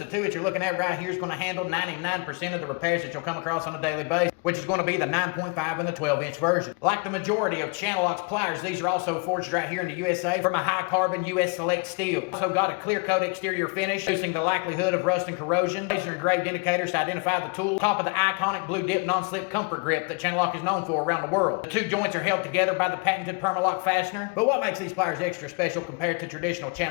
2 that you're looking at right here is going to handle 99% of the repairs that you'll come across on a daily basis, which is going to be the 9.5 and the 12 inch version. Like the majority of CHANNELLOCK's pliers, these are also forged right here in the USA from a High Carbor U.S. select steel. Also got a clear coat exterior finish, reducing the likelihood of rust and corrosion. Laser engraved indicators to identify the tool. Top of the iconic blue dip non-slip comfort grip that CHANNELLOCK is known for around the world. The 2 joints are held together by the patented Permalock fastener. But what makes these pliers extra special compared to traditional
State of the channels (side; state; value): right; quieter; 33.5 dB